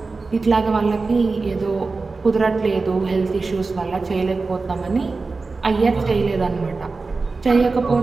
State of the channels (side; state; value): left; quieter; 4.0 dB